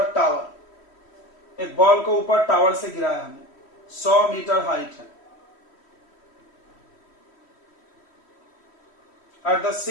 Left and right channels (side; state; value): right; late; 3.1 ms